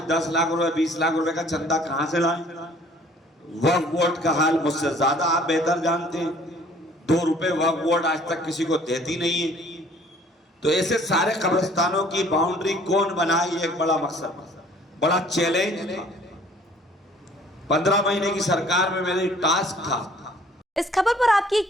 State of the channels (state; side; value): normal; both; correlation 0.55